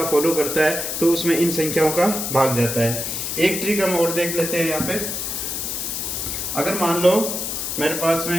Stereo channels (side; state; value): left; noise; hiss, 3 dB below the sound